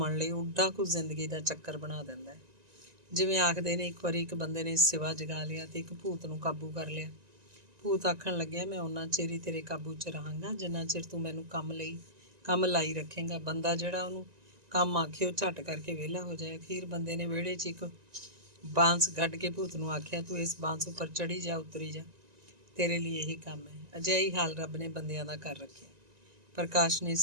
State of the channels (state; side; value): late; left; 1.9 ms